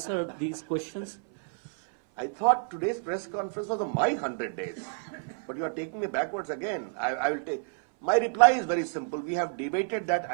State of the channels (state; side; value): silent; left; 58 dB below the other